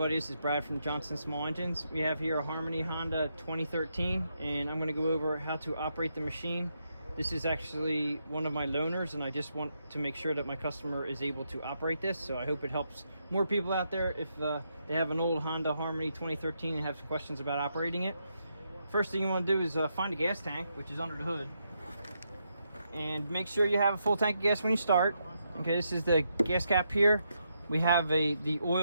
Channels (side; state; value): both; inverted; correlation -0.81